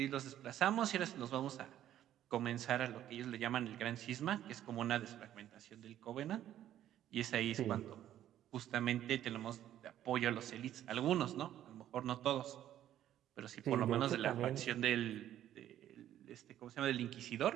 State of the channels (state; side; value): quieter; left; 11.8 dB